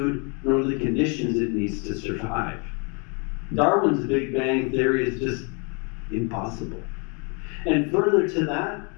nor the conditions it needs to survive. Darwin's Big Bang theory is just impossible. And further to that,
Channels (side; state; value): right; quieter; 34.7 dB